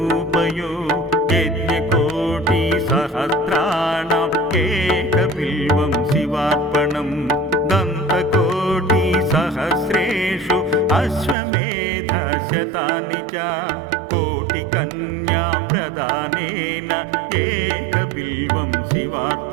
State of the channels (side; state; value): left; drops out; at 11.4 s